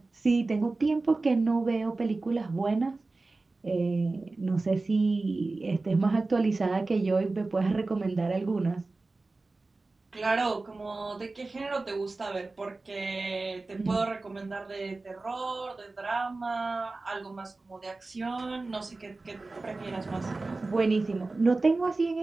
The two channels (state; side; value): quieter; left; 3.4 dB